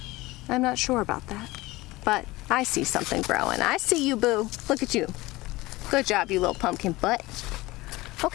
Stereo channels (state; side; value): quieter; right; 20.1 dB